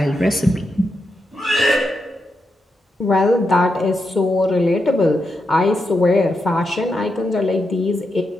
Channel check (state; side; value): normal; both; correlation 0.85